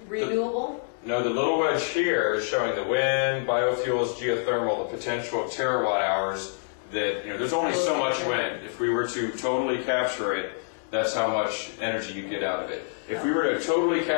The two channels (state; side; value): silent; right; digital silence